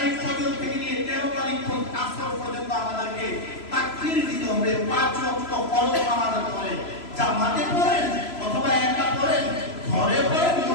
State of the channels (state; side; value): late; right; 3.0 ms